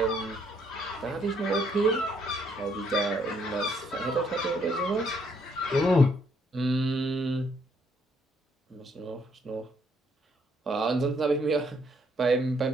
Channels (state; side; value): normal; both; correlation 0.69